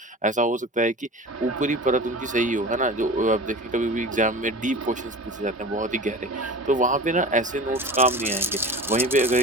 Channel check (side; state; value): both; normal; correlation 0.34